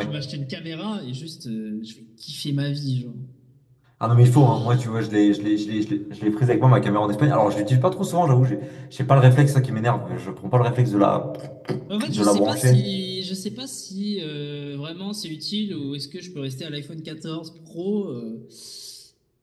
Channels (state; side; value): identical; both; correlation 1.00